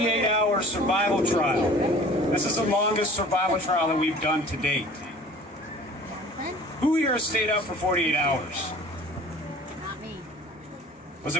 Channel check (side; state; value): both; normal; correlation 0.47